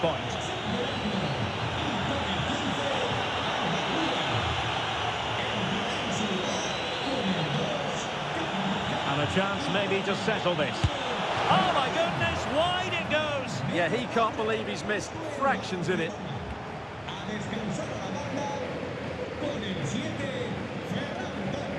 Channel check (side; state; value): both; identical; correlation 1.00